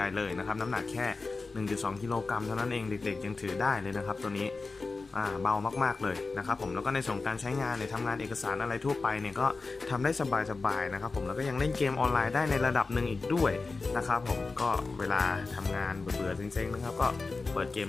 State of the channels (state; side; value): quieter; right; 3.9 dB